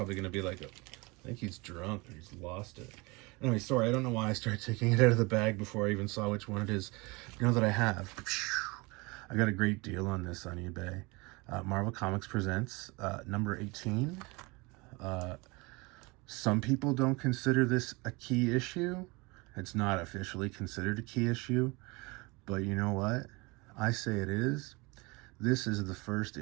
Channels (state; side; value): quieter; left; 25.8 dB